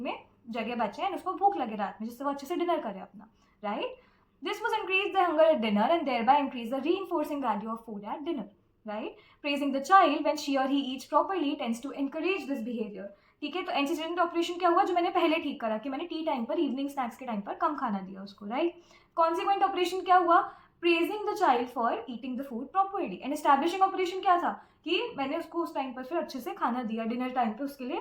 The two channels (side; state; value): both; identical; correlation 1.00